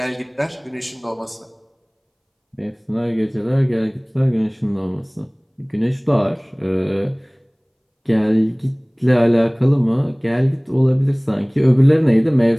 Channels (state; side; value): identical; both; correlation 1.00